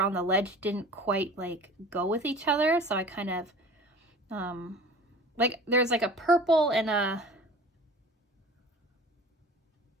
the ledge didn't quite like go with each other. So I kind of like there's like a purple and a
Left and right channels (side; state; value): both; normal; correlation 0.42